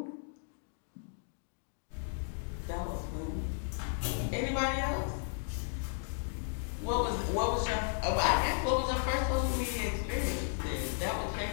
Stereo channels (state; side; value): silent; right; digital silence